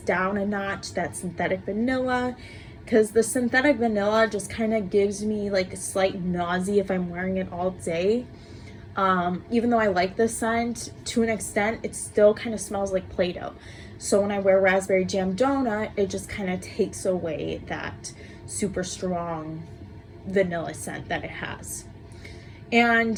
a notch that synthetic vanilla, because the synthetic vanilla just kind of gives me like a slight nausea if I'm wearing it all day. Even though I like this scent to an extent, it still kind of smells like Play-Doh. So when I wear Raspberry Jam Donut, it just kind of takes away that super strong vanilla scent that it has.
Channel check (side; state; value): both; identical; correlation 1.00